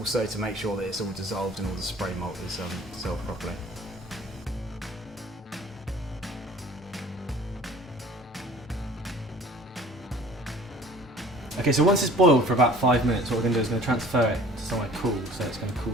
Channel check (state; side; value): normal; both; correlation 0.49